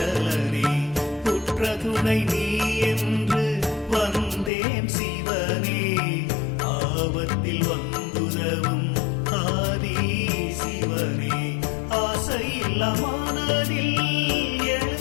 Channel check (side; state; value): right; drops out; at 4.5 s